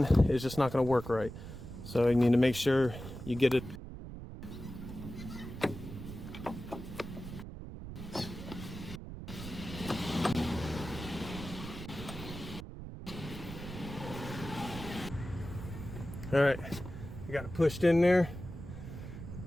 It's just not going to work right. So you need to make sure you get it. All right, you got it pushed in there.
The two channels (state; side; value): noise; right; rumble, 10 dB below the sound